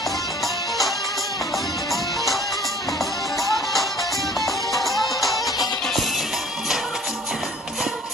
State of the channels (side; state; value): both; normal; correlation 0.53